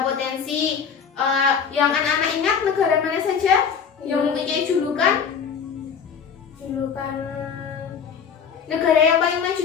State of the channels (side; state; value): right; quieter; 6.7 dB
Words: potensi. Yang anak-anak ingat negara mana saja yang mempunyai julukan? Julukan Negara yang paling maju